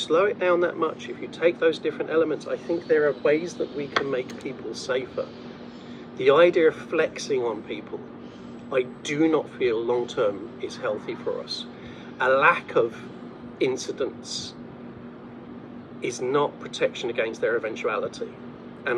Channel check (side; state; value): both; identical; correlation 1.00